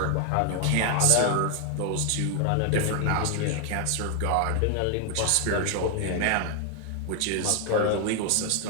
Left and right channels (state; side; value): different; both; correlation 0.00